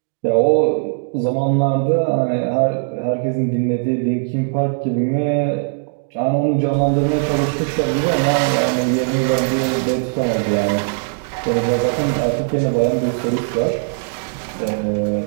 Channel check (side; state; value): left; silent; digital silence